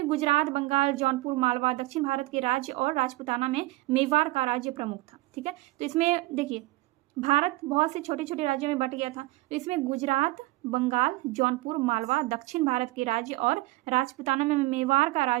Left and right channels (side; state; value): left; quieter; 20.3 dB